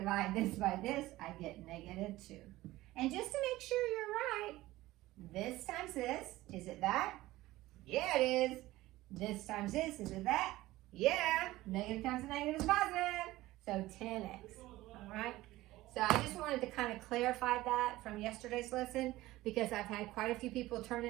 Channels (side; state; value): left; quieter; 17.4 dB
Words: this by this, I get negative 2. And just to make sure you're right, this times this, is it that? Yeah, it is. This times this, is it that? Yeah, negative times a negative is positive, so 10x, all right? So I just wanted to kind of clarify that from yesterday's lesson, because I've had quite a few people turn